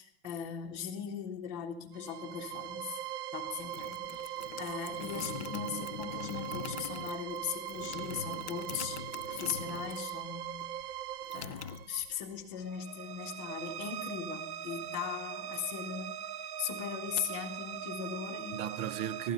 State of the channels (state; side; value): late; left; 5.9 ms